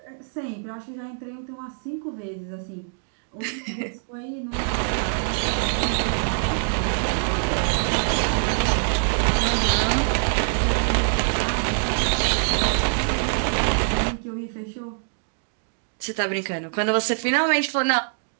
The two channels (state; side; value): silent; left; digital silence